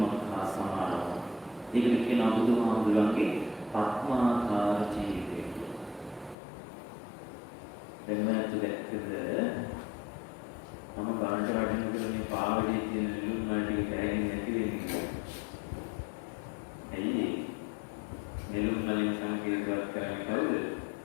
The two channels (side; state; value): right; drops out; at 6.4 s